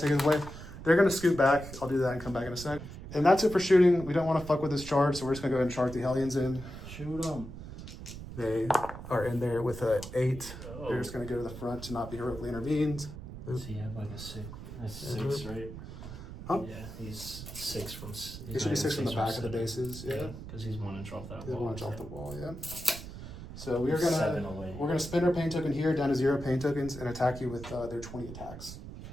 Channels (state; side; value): noise; right; rumble, 11 dB below the sound